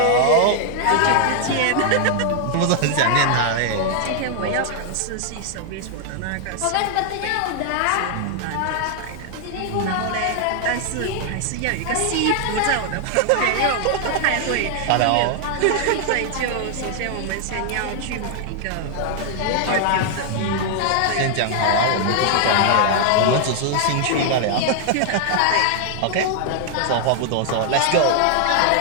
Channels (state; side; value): different; both; correlation 0.00